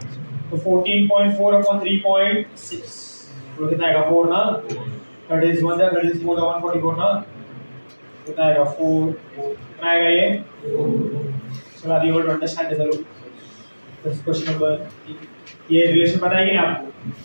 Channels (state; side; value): inverted; both; correlation -1.00